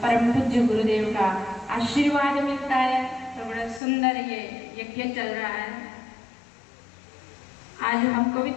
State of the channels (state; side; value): drops out; right; at 3.8 s